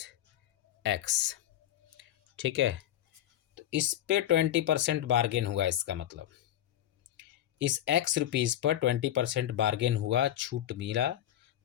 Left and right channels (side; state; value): right; quieter; 12.1 dB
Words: x, ठीक है। तो इस पे 20% बार्गेन हुआ, इसका मतलब इस एक्स रुपीज़ पर 20% बार्गेन हुआ, छूट मिला,